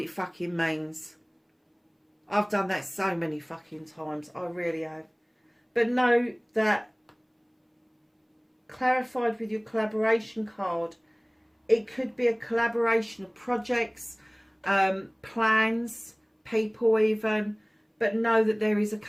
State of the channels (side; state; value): both; identical; correlation 1.00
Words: fucking means. I've done that so many fucking times. I really have. But know that clarified with your collaboration card, it could be a collaboration of projects, plans, people even. But know that there is a